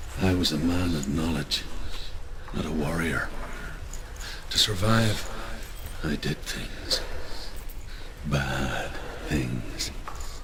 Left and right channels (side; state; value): both; identical; correlation 1.00